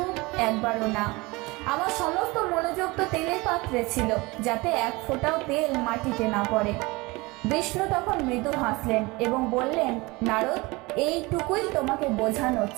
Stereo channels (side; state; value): left; quieter; 23.6 dB